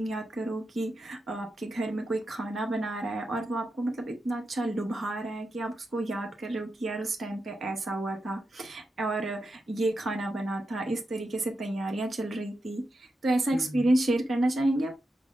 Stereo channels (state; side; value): normal; both; correlation 0.88